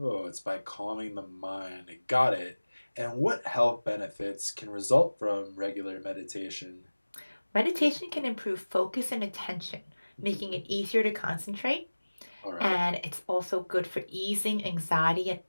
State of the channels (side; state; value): both; inverted; correlation -1.00